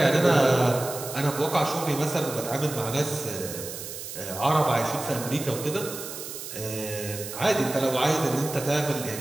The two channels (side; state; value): right; noise; hiss, 9 dB below the sound